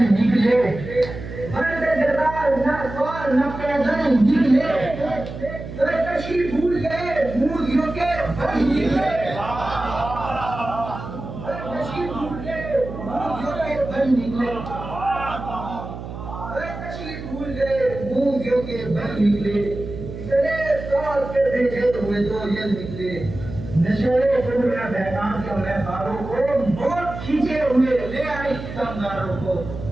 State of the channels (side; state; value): right; noise; hum, 10 dB below the sound